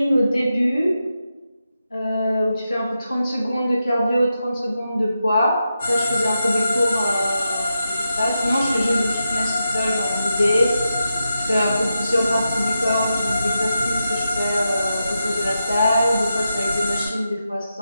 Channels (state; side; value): inverted; both; correlation -0.88